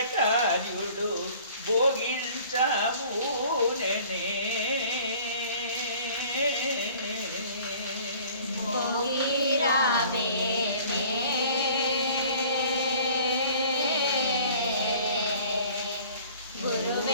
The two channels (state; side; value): inverted; both; correlation -0.50